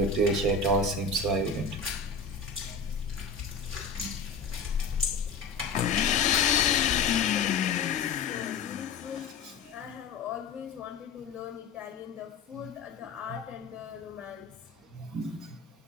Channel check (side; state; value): right; quieter; 4.5 dB